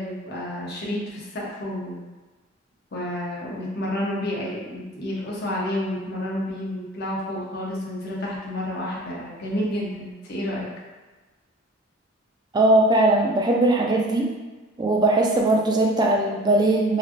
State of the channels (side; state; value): both; normal; correlation 0.43